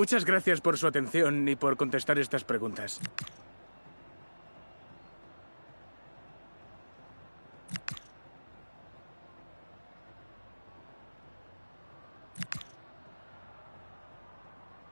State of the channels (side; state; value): both; inverted; correlation -1.00